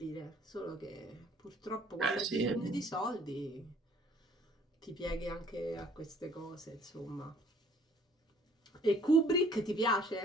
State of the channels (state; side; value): normal; both; correlation 0.57